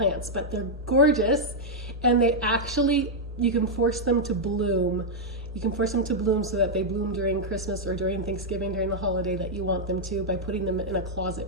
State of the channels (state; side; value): normal; both; correlation -0.04